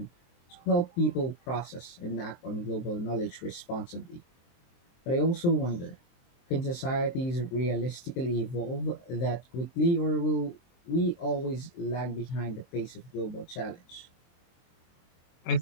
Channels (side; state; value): right; late; 23 ms